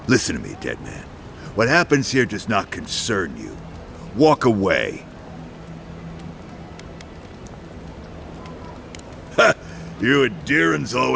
Listen to me, dead man. What happens here does not concern you. Walk away. Ha! You and Deerins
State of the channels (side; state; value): both; identical; correlation 1.00